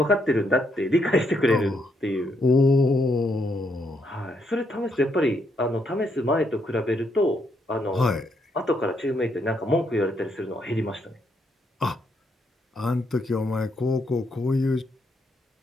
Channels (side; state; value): both; normal; correlation 0.76